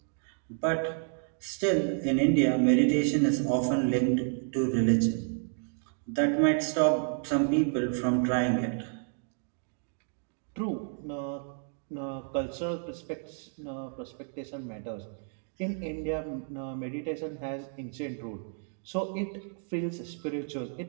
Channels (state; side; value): silent; left; 57 dB below the other